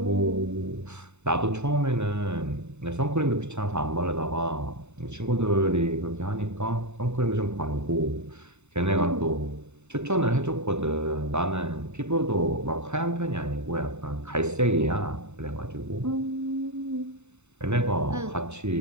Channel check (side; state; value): left; late; 0.82 ms